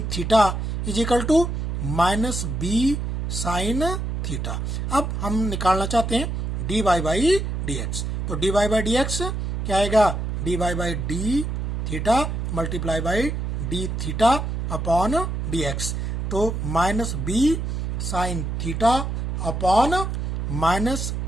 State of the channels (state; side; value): noise; right; hum, 2 dB below the sound